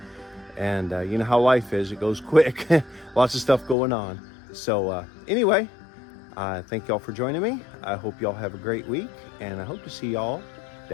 and you know how life is, it goes quick. Lots of stuff going on. So anyway, thank y'all for joining me. I hope y'all have a great week, and I hope to see y'all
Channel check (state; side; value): drops out; right; at 3.8 s